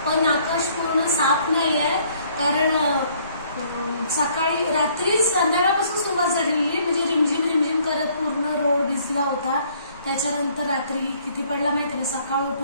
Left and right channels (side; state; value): both; inverted; correlation -0.62